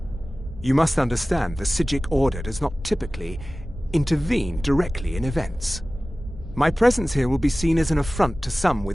You must understand the Psijic Order does not typically intervene directly in events. My presence here will be seen as an affront to some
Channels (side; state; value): both; normal; correlation 0.97